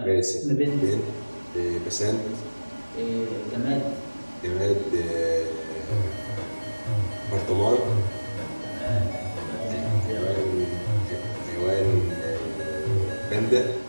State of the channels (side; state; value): both; inverted; correlation -1.00